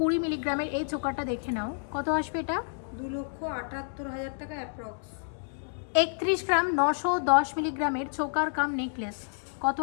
মিলিগ্রামের এই চোকারটা দেখে নাও, কত আসবে এটা? 2,78,000 টাকা অ্যাপ্রক্স। 31 গ্রাম 910 মিলিগ্রামের চোকার কাম নেকলেস, কত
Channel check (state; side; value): silent; right; digital silence